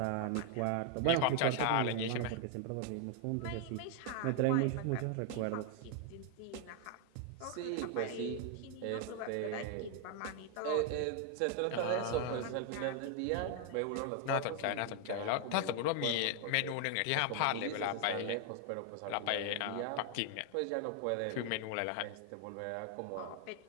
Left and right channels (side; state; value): both; different; correlation 0.00